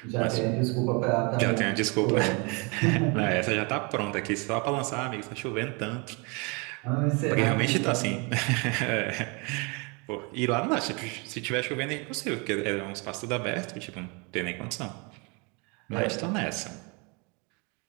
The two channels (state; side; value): quieter; left; 30.8 dB